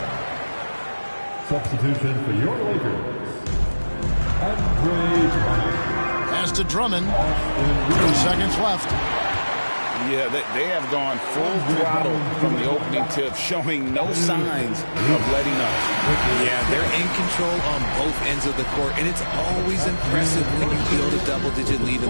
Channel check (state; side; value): inverted; both; correlation -1.00